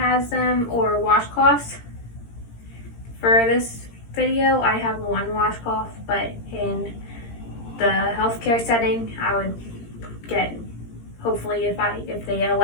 them or washcloths. For this video, I have one washcloth, but in the healthcare setting, I would get, hopefully if they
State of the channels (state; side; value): late; right; 17 ms